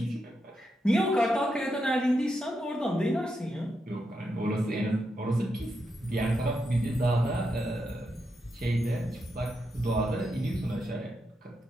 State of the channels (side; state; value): both; normal; correlation 0.84